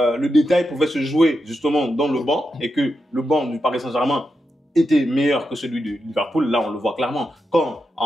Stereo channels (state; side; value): normal; both; correlation 0.87